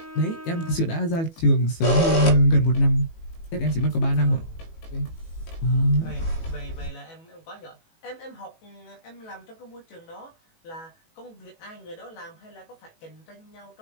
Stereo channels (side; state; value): right; late; 18 ms